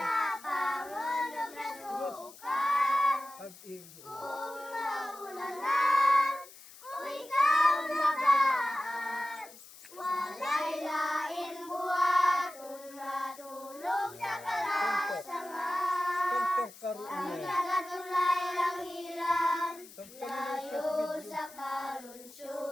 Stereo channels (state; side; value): noise; left; hiss, 19 dB below the sound